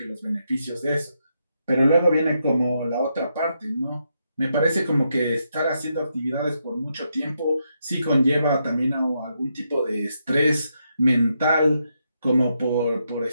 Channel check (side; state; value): both; inverted; correlation -0.81